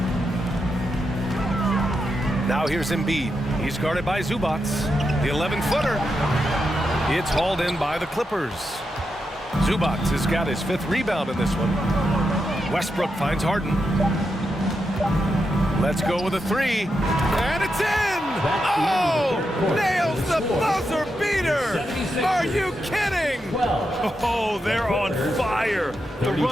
Now here's Embiid. He's guarded by Zubats. The 11-footer. It's hauled in by the Clippers. Zubats has got his fifth rebound in this one. Westbrook finds Harden. Let's go with a three. And it's in! Oh! Nails the buzzer beater! Are you kidding? Oh, they're on fire. The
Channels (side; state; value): both; normal; correlation 0.86